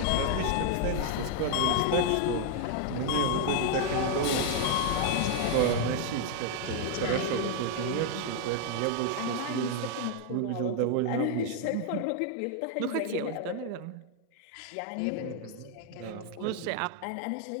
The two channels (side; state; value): both; different; correlation 0.00